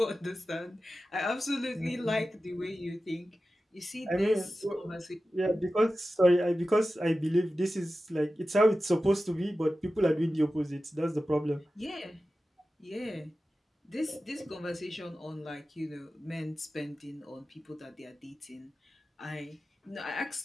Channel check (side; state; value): both; normal; correlation 0.94